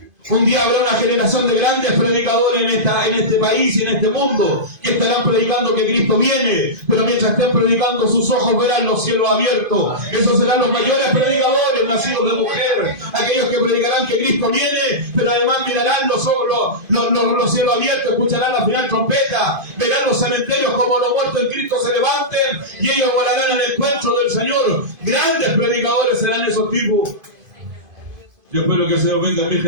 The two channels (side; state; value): left; late; 2.5 ms